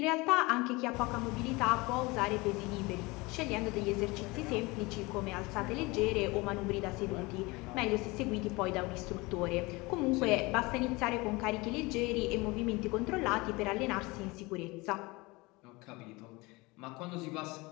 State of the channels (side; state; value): right; quieter; 24.0 dB